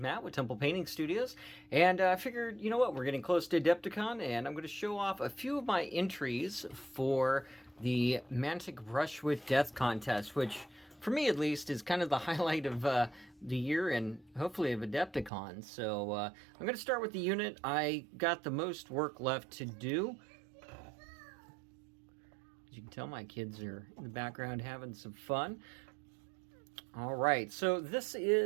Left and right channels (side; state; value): left; drops out; at 15.3 s